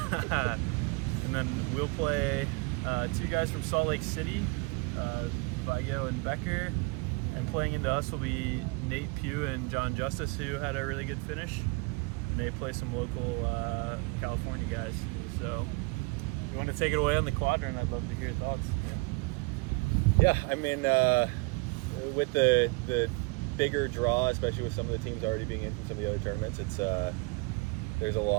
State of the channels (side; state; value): left; quieter; 27.8 dB